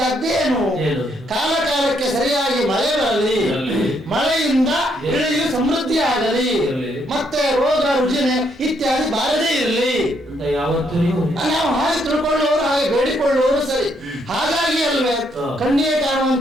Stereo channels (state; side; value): normal; both; correlation 0.73